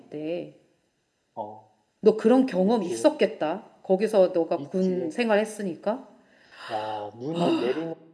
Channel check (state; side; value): identical; both; correlation 1.00